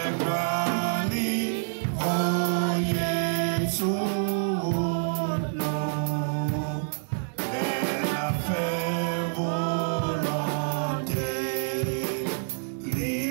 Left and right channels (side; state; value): left; silent; digital silence